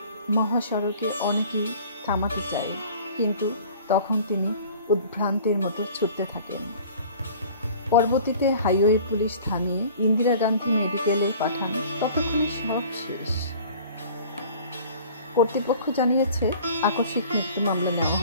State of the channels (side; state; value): both; inverted; correlation -0.47